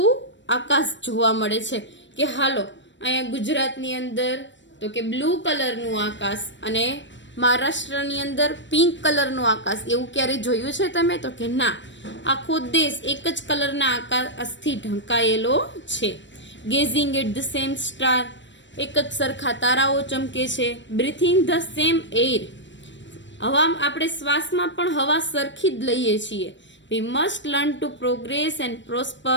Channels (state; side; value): late; right; 0.53 ms